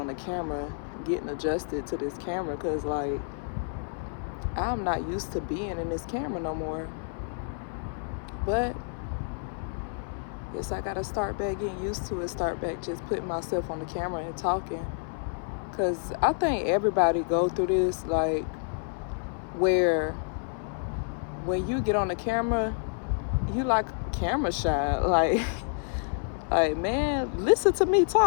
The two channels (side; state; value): right; silent; 59 dB below the other